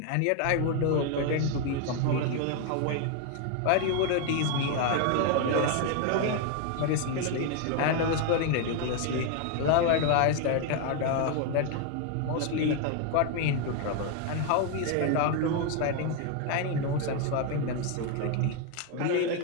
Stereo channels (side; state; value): both; different; correlation 0.01